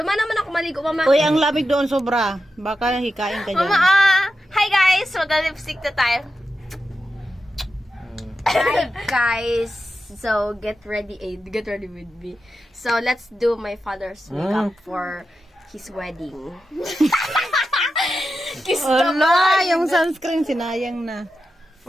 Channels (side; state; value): both; normal; correlation 0.90